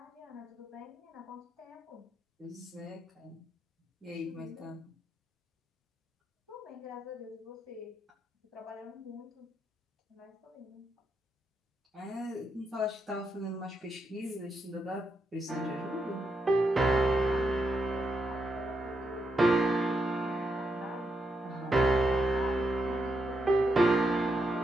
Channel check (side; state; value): both; normal; correlation 0.82